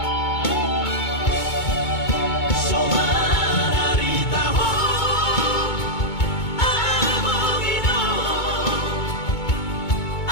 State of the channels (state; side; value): late; right; 2.2 ms